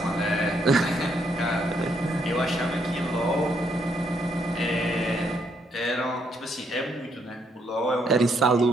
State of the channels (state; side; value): normal; both; correlation 0.74